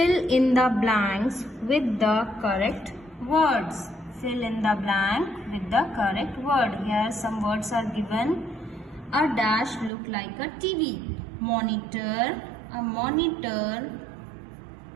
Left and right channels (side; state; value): left; drops out; at 9.9 s